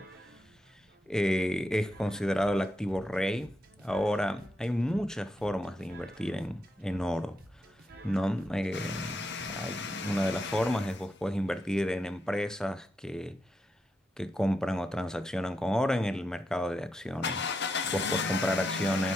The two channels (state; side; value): normal; both; correlation 0.84